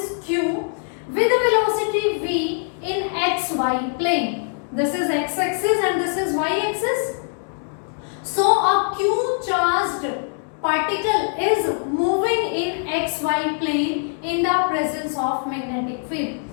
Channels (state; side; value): silent; right; 64 dB below the other